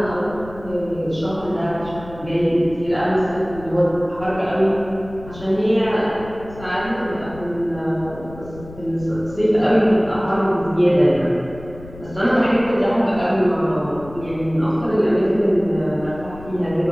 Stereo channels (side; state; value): left; noise; rumble, 16 dB below the sound